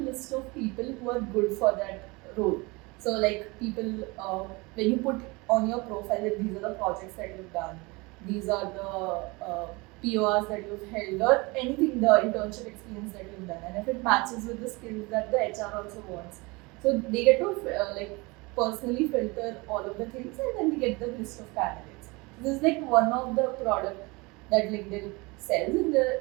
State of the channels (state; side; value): quieter; left; 25.5 dB